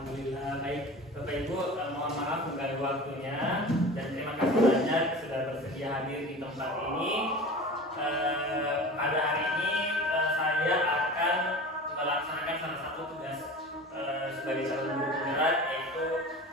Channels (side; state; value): both; normal; correlation 0.35